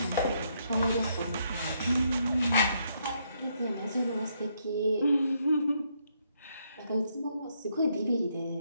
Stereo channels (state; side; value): inverted; both; correlation -0.74